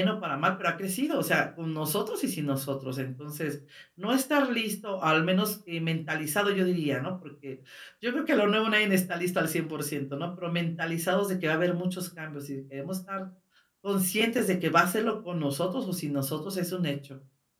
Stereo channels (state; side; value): identical; both; correlation 1.00